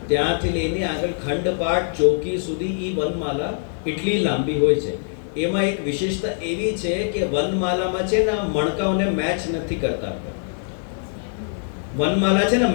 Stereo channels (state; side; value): silent; right; 64 dB below the other